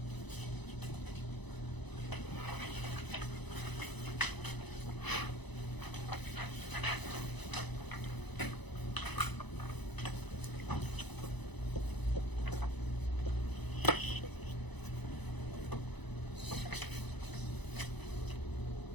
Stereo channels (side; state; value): right; late; 1.0 ms